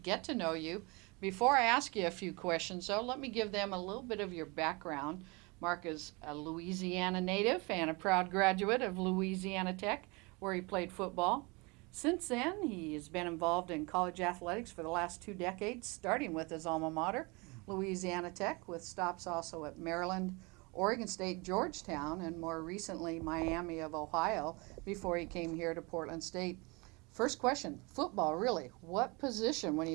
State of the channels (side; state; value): left; quieter; 27.5 dB